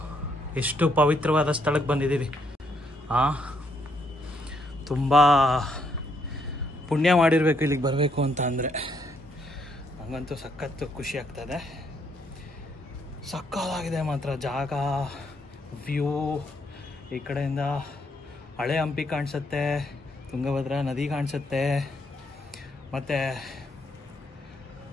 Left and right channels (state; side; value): normal; both; correlation 0.74